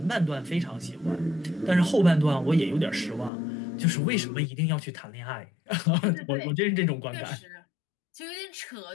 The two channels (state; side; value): drops out; right; at 3.3 s